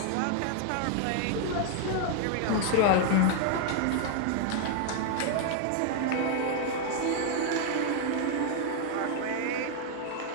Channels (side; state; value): both; different; correlation 0.00